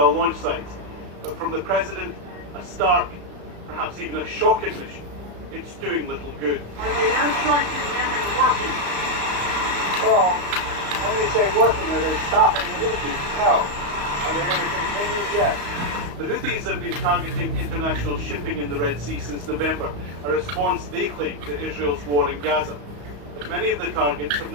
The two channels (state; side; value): late; left; 34 ms